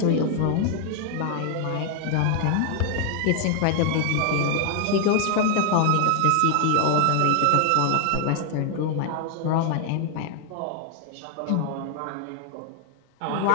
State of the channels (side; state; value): both; different; correlation 0.00